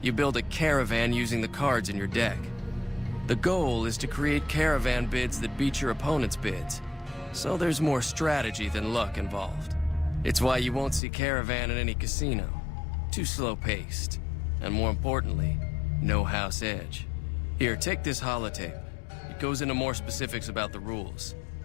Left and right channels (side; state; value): right; drops out; at 11.0 s